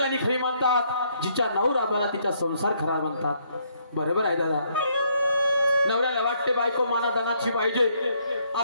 खरी म्हणतात, जिच्या नवरा बरा तिचा संसार खरा म्हणतात। बरोबर आहे दादा। नवऱ्याला वाटते बायको मानादानाची पाहिजे,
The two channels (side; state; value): both; inverted; correlation -0.70